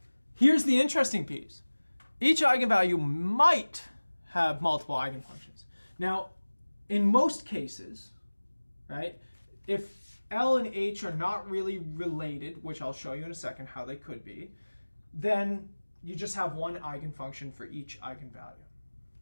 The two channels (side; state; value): both; inverted; correlation -1.00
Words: Here's the interesting piece. Each eigenvalue might have multiple eigenfunctions. Now, in most cases, right, if L and H are not really related, which I'll show you in a second how they could be, then you just have one eigenfunction for each eigenvalue.